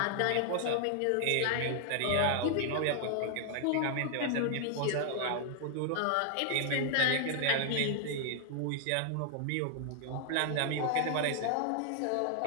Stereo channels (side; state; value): both; different; correlation 0.00